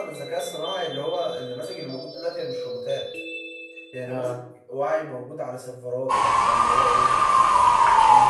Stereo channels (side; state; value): both; identical; correlation 1.00